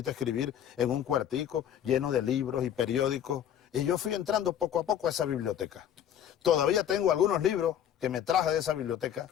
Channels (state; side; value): quieter; right; 9.8 dB